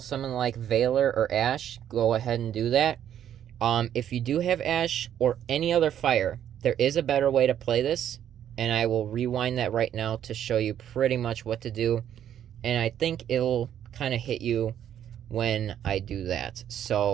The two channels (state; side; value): quieter; left; 10.2 dB